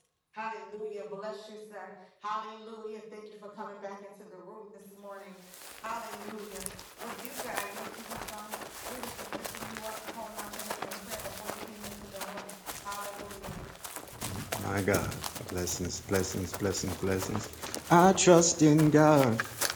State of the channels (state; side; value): identical; both; correlation 1.00